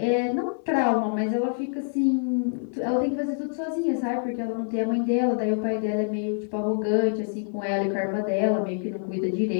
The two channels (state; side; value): silent; right; 61 dB below the other